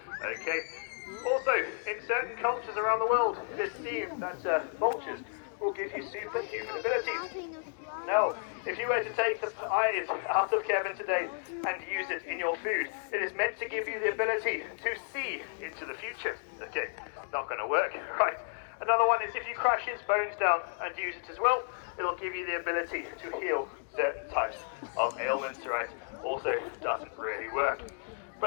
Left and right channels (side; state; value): right; silent; digital silence